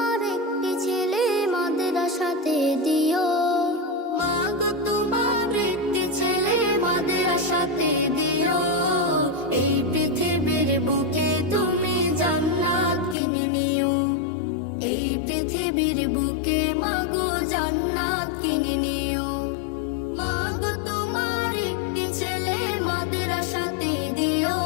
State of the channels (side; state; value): right; drops out; at 13.2 s